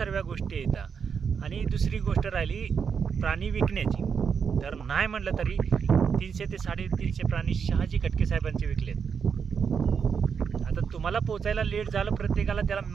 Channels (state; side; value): quieter; left; 6.5 dB